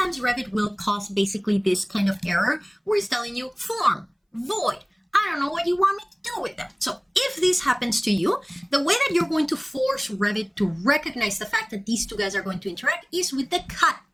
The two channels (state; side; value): identical; both; correlation 1.00